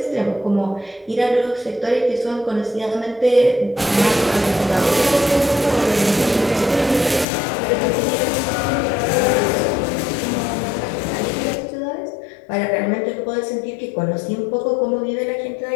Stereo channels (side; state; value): right; drops out; at 7.2 s